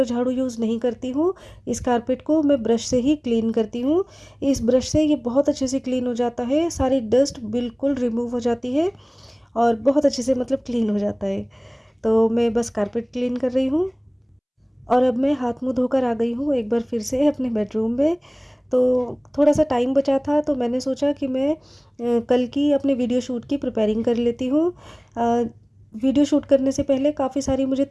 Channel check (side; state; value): both; identical; correlation 1.00